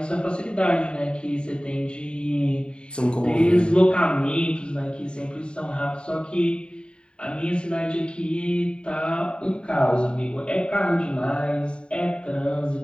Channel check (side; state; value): right; late; 0.051 ms